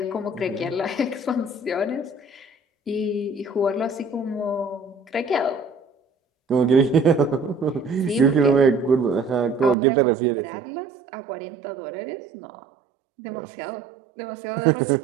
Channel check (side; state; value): left; drops out; at 9.8 s